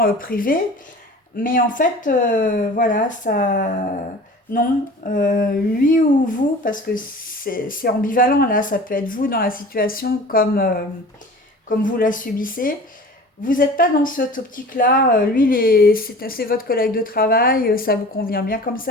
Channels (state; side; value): normal; both; correlation 0.41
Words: privée. Mais en fait, voilà, ça... Non, lui ou vous, parce que c'est ambivalent là, ça peut être vous dans la situation comme, comme vous la subissez. Vous n'êtes pas dans cette optique-là. Lui, c'est votre collègue de travail, ça vous convient bien comme